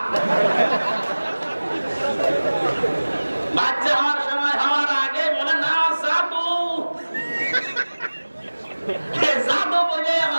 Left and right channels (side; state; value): both; inverted; correlation -1.00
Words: বাচ্চা হওয়ার সময় হওয়ার আগে বলে না জাদু, জাদু বলে